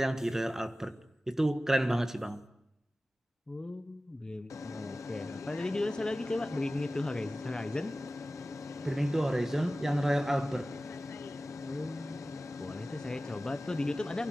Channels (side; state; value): both; normal; correlation 0.96